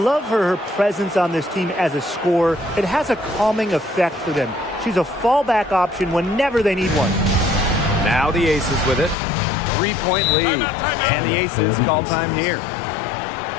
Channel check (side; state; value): right; drops out; at 9.2 s